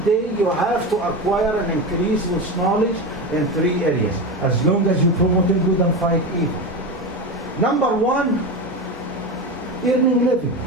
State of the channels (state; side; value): normal; both; correlation 0.21